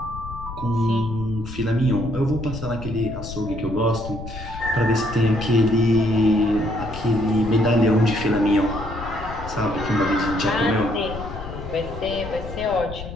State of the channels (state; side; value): noise; left; rumble, 11 dB below the sound